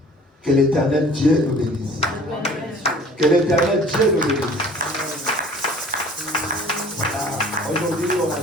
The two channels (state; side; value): normal; both; correlation 0.49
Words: Que l'Éternel Dieu nous bénisse. Let God bless you. Que l'Éternel Dieu nous bénisse. Aujourd'hui, on a